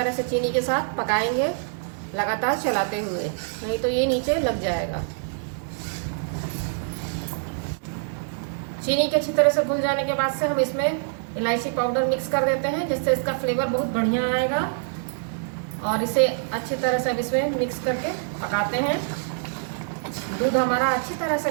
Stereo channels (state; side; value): silent; left; digital silence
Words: से चीनी के साथ पकाएंगे, लगातार चलाते हुए, नहीं तो ये नीचे लग जाएगा। चीनी के अच्छी तरह से घुल जाने के बाद से हम इसमें इलायची पाउडर मिक्स कर देते हैं, जिससे इसका फ्लेवर बहुत बढ़िया आएगा। और इसे अच्छी तरह से अब इसमें मिक्स करके पकाते हैं। दूध हमारा अच्छी तरह